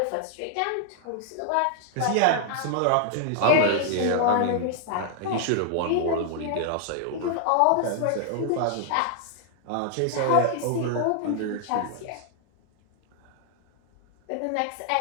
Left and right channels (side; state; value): both; different; correlation 0.00